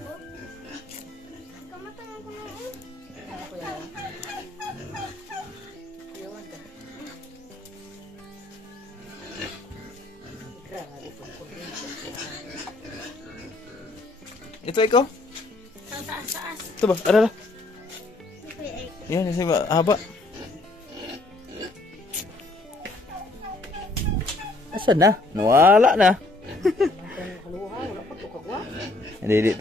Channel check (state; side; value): quieter; right; 3.0 dB